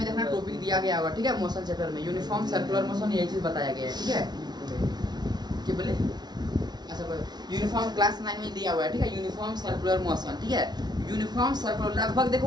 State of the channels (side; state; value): left; late; 0.20 ms